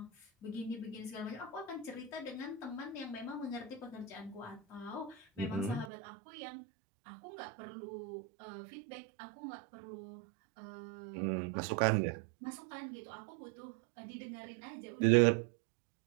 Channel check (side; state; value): left; drops out; at 5.9 s